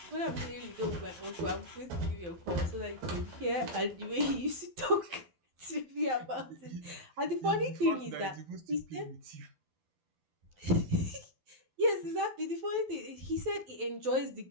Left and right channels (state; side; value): late; left; 11 ms